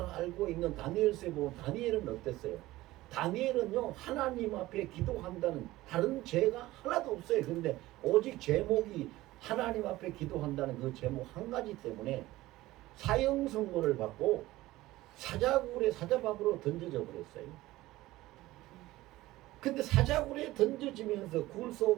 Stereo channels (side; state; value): left; quieter; 17.4 dB